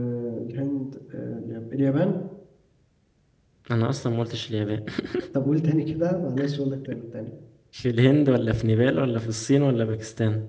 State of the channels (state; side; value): identical; both; correlation 1.00